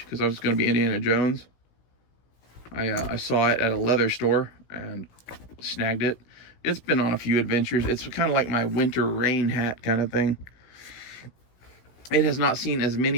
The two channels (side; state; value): right; late; 17 ms